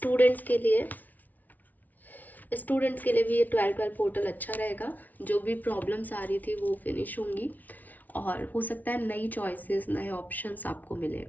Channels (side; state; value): right; late; 0.078 ms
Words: के लिए भी ये 12 पोर्टल अच्छा रहेगा। जो भी प्रॉब्लम्स आ रही थी वो फिनिश होंगी, और हो सकता है नई चॉइसेस, नए ऑप्शंस आपको मिले।